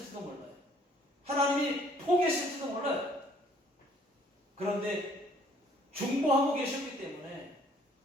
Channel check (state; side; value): normal; both; correlation 0.60